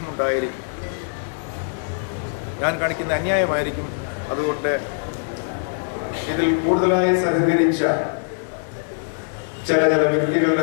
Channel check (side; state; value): right; silent; digital silence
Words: ഞാൻ കാണിക്കുന്ന അന്യായമായിരിക്കും. അതുകൊണ്ട് ഇതിൽ കൂടുതലായി സഹകരിച്ച ചില